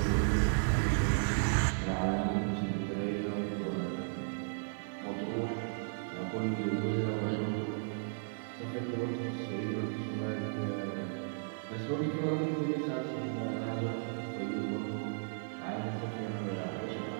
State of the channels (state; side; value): silent; left; 55 dB below the other